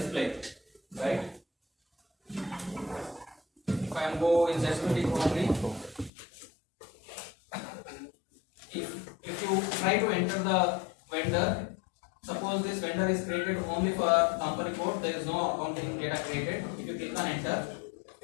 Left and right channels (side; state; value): right; drops out; at 6.1 s